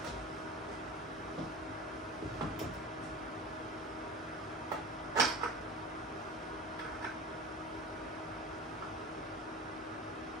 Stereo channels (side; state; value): both; normal; correlation 0.32